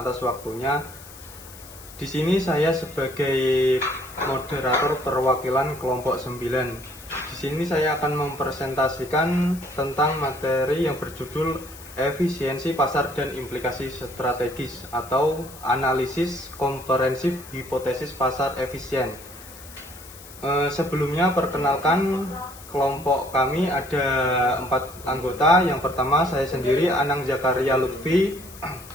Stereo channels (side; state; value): left; noise; hiss, 18 dB below the sound